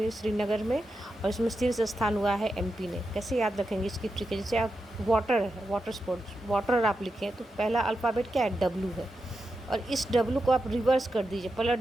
श्रीनगर में, और इसमें शीर्ष स्थान हुआ है MP ने। कैसे याद रखेंगे इसकी ट्रिक है, जैसे आप वाटर है, वाटर स्पोर्ट्स, वाटर आप लिखें तो पहला अल्फ़ाबेट क्या है, W है, और इस W को आप रिवर्स कर दीजिए, पलट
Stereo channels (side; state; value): both; normal; correlation 0.88